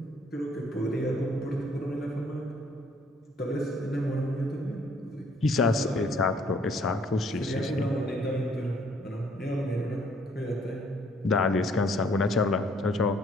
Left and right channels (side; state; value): both; normal; correlation 0.63